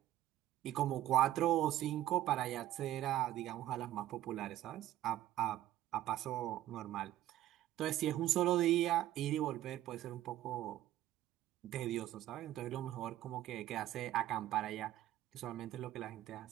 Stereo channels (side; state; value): left; quieter; 13.8 dB